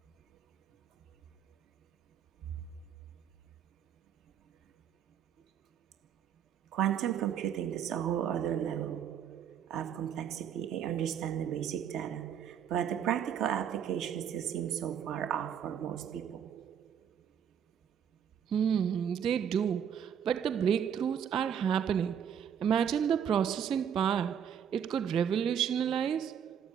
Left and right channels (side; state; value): left; quieter; 8.5 dB